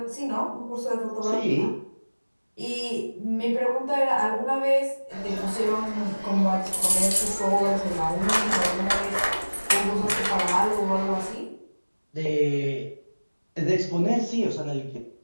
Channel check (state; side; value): inverted; both; correlation -1.00